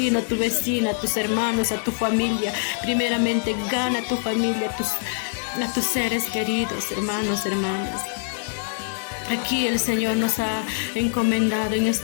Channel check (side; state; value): right; silent; 61 dB below the other